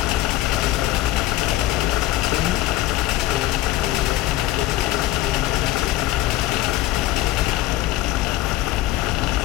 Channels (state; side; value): quieter; right; 15.4 dB